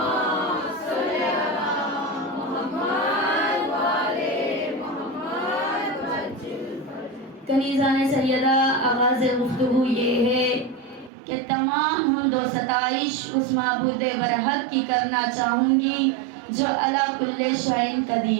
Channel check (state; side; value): drops out; left; at 11.1 s